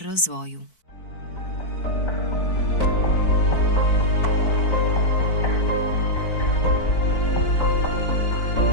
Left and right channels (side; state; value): right; late; 4.6 ms